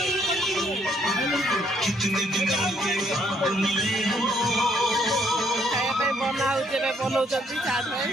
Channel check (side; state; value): both; normal; correlation 0.68